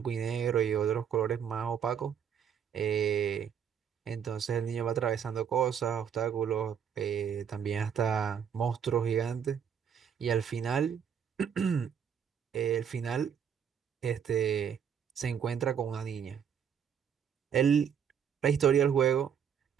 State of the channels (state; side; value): quieter; left; 8.0 dB